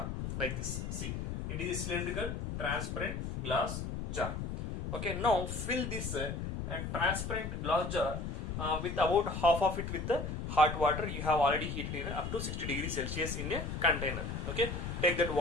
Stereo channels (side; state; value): left; noise; rumble, 4 dB below the sound